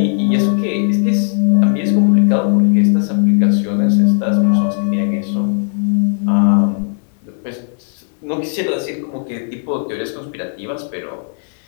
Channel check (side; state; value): right; silent; 69 dB below the other